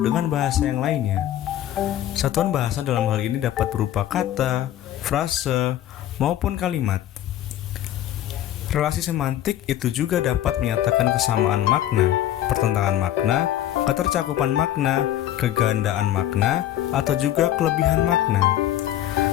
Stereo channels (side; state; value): right; quieter; 12.4 dB